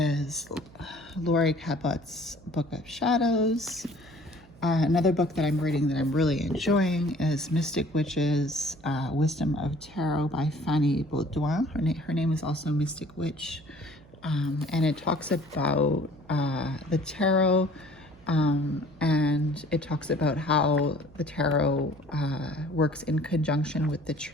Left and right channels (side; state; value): right; noise; hum, 24 dB below the sound